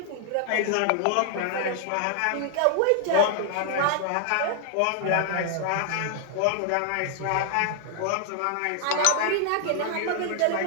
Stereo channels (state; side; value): different; both; correlation 0.00